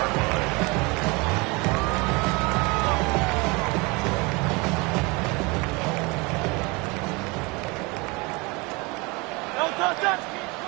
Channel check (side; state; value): left; quieter; 26.5 dB